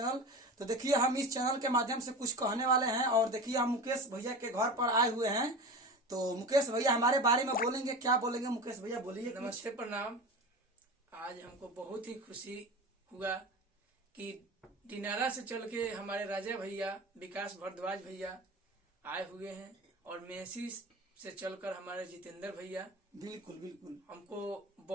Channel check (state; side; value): normal; both; correlation 0.30